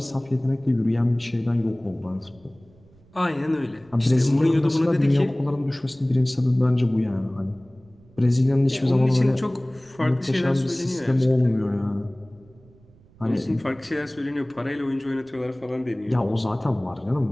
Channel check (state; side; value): noise; right; rumble, 28 dB below the sound